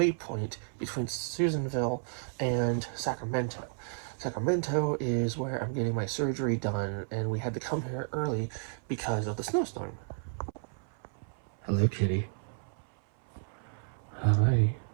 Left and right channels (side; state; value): left; silent; 56 dB below the other